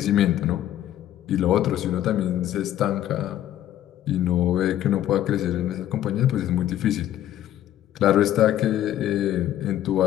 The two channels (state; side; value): quieter; right; 12.4 dB